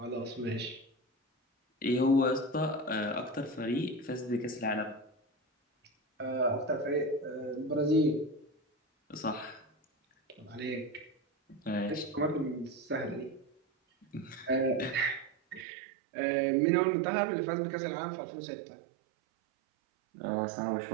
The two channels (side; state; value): left; drops out; at 15.7 s